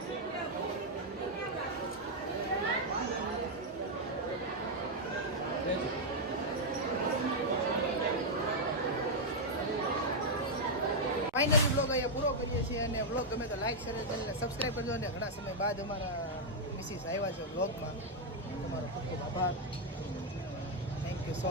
ફાઇનલી બ્લોગ અહીંયા પૂરો કરીએ છીએ અને બ્લોગ ગમે તો લાઈક શેર ચેનલને સબસ્ક્રાઈબ કરજો અને ઘણા સમય બાદ અમારા મિસિસ આવ્યા છે બ્લોગમાં તમારો ખૂબ ખૂબ આભાર થેન્ક યુ સો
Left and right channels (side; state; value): both; normal; correlation -0.02